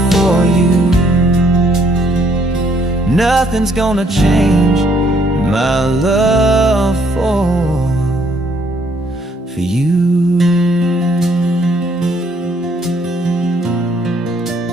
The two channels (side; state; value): both; normal; correlation 0.66